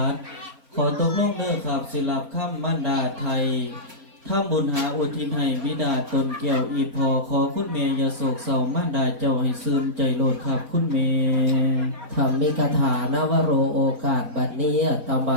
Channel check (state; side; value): late; left; 4.0 ms